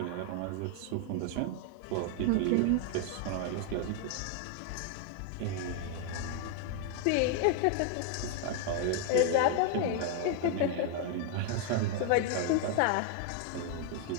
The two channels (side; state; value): both; different; correlation 0.00